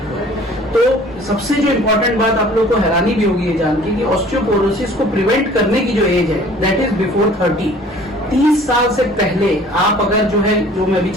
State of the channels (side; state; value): both; normal; correlation 0.51